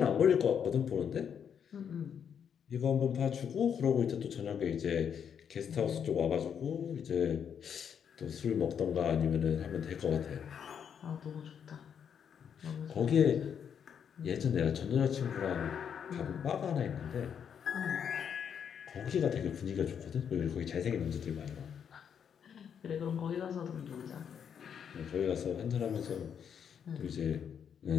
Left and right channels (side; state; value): right; quieter; 7.8 dB